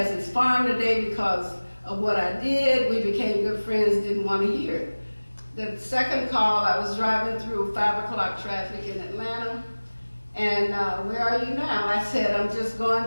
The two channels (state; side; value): inverted; both; correlation -1.00